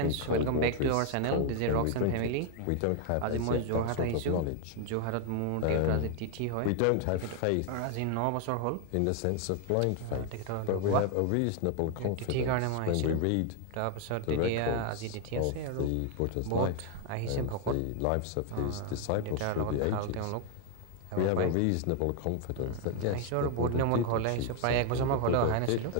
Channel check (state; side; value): different; both; correlation 0.00